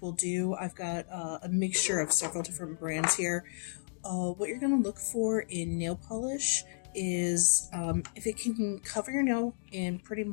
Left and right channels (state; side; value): silent; right; digital silence